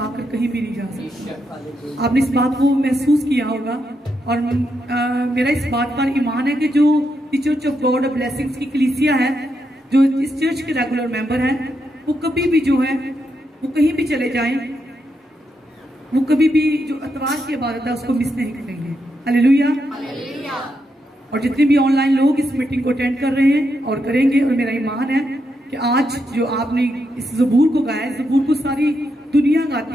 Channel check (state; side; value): normal; both; correlation 0.82